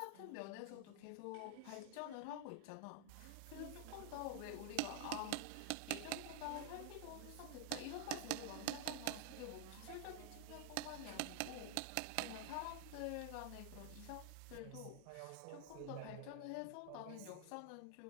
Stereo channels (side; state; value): both; different; correlation 0.00